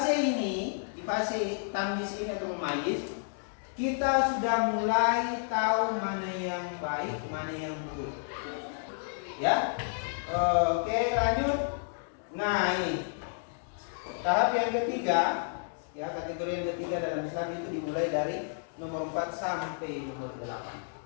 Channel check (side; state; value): right; silent; digital silence